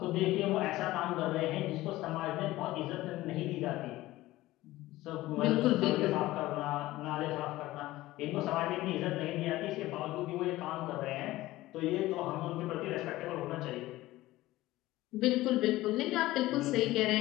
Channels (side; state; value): right; quieter; 17.2 dB